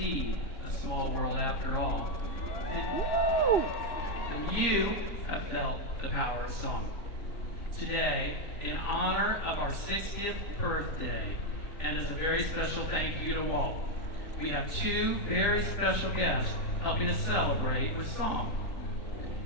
a small world after all, then you have felt the power of song. Today, in honor of our 60th birthday, and as a very special thank you to Walt, we have two very special guests helping us celebrate with song.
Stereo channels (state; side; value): late; right; 3.9 ms